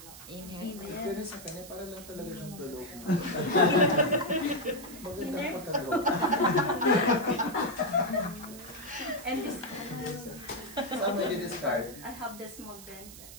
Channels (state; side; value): noise; right; hiss, 16 dB below the sound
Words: Pero sa kanya, para lang talaga siyang tulog. Magandang pagkalo. And this. Saan mo i-discard? I have the small denser.